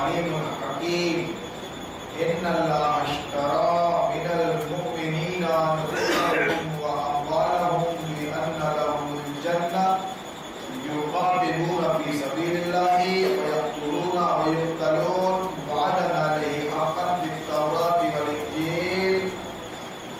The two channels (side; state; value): both; identical; correlation 1.00